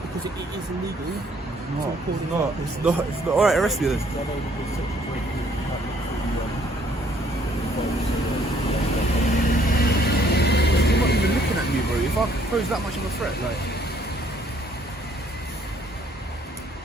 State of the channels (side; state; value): both; normal; correlation 0.64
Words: because it is illegal. It's not. Alright, arrest me then. You're not even looking at me, bro. If I pose that much of a threat, like...